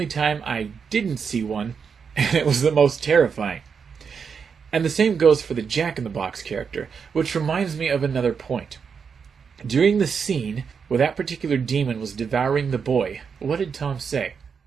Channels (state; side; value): quieter; left; 6.2 dB